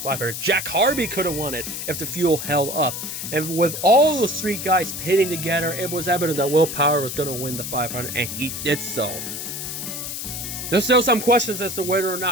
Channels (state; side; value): noise; left; hiss, 6 dB below the sound